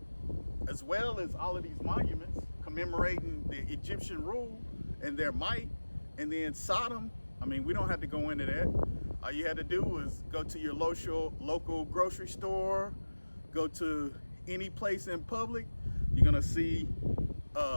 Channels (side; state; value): both; inverted; correlation -1.00